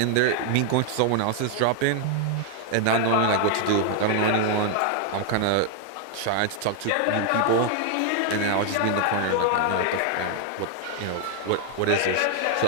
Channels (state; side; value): different; both; correlation 0.00